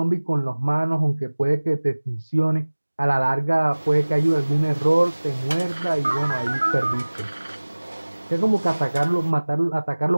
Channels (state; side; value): inverted; both; correlation -1.00